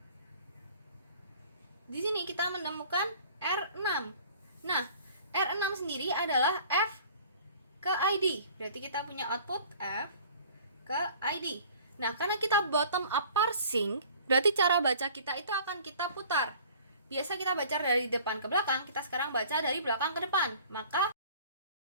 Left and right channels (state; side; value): inverted; both; correlation -0.49